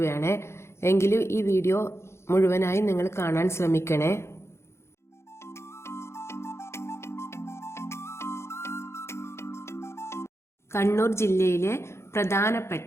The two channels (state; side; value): late; right; 0.13 ms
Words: എങ്കിലും ഈ വീഡിയോ മുഴുവനായി നിങ്ങൾ കാണാൻ ശ്രമിക്കണേ. കണ്ണൂർ ജില്ലയിലെ